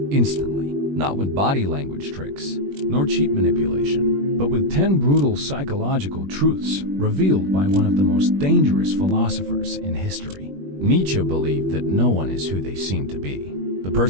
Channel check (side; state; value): left; late; 21 ms